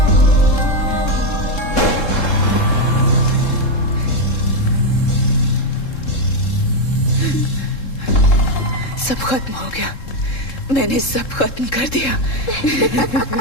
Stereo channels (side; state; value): right; late; 3.7 ms